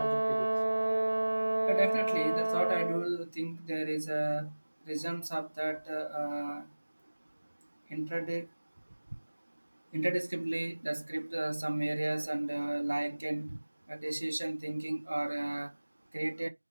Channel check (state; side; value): inverted; both; correlation -1.00